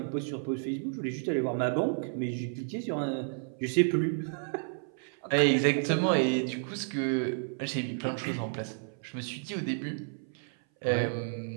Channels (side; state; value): left; silent; 57 dB below the other